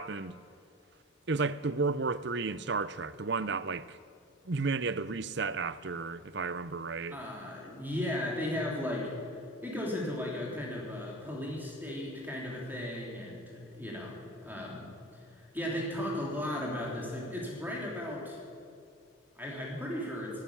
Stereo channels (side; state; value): both; normal; correlation 0.34